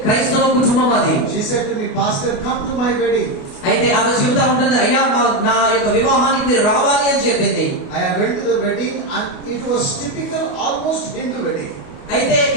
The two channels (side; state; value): right; late; 28 ms